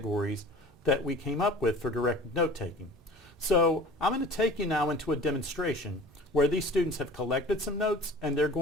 that we came up with for direct note-taking. So I'm going to take you now into a demonstration where these students have collected some notes and they're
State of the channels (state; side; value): normal; both; correlation 0.43